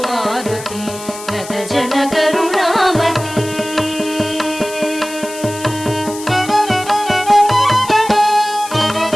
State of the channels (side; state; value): left; noise; hiss, 13 dB below the sound